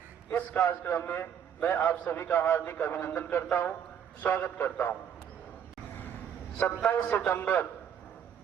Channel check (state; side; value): quieter; left; 8.6 dB